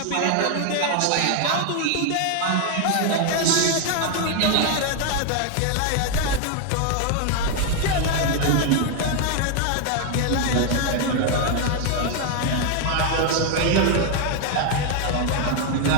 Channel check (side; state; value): both; different; correlation 0.01